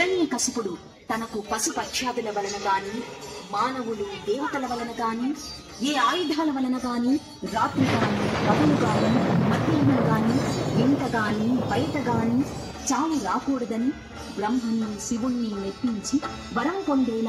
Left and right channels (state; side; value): identical; both; correlation 1.00